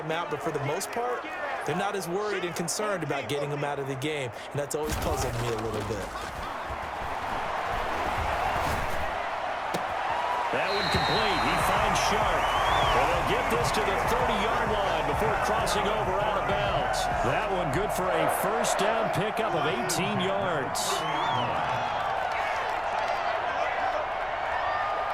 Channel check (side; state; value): both; identical; correlation 1.00